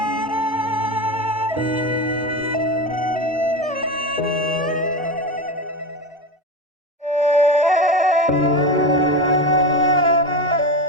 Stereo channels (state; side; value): normal; both; correlation 0.21